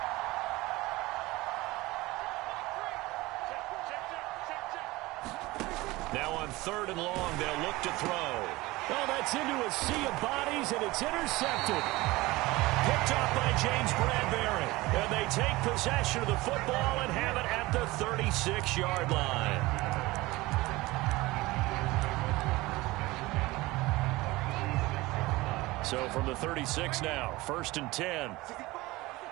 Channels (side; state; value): left; quieter; 20.4 dB